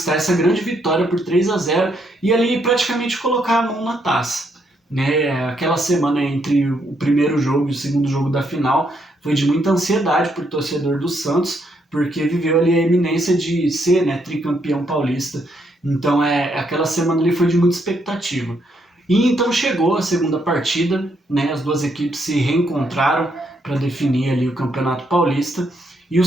essa grande vitória por 3-0 e ali praticamente colocar a mão na taça. Né? Aquela semana entre o primeiro jogo e o segundo jogo da final foi de muita ansiedade para o torcedor do Santos, porque viveu ali a iminência de ser, né, tricampeão paulista. Então aquela semana ali foi de muita expectativa. E então chegou a segunda partida, né, as 2 equipes se reencontraram para definir ali o Campeonato Paulista e o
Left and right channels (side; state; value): both; normal; correlation 0.75